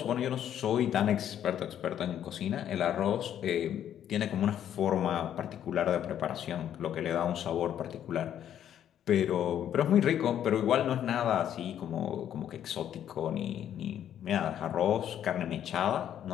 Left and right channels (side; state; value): right; quieter; 10.2 dB